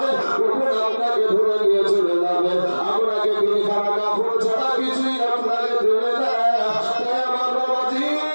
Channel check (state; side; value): inverted; both; correlation -1.00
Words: কখন আপনাকে ধরে নিয়ে চলে যাবে আপনাকে তিনি খানা কাপড় ছাড়া কিছুই আপনাকে দেবে না তাই আমার বাবাজি